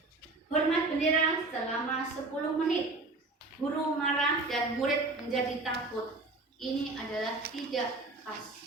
hormat bendera selama 10 menit. Guru marah dan murid menjadi takut. Ini adalah tidak pas.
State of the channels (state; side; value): quieter; left; 3.2 dB